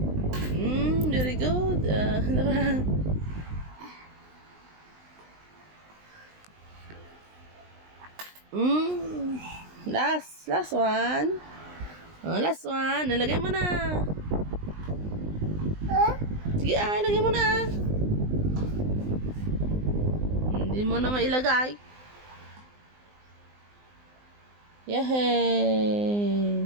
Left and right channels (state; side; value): late; left; 19 ms